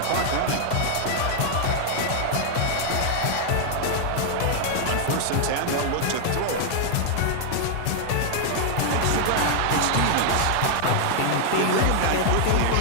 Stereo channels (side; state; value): both; different; correlation 0.00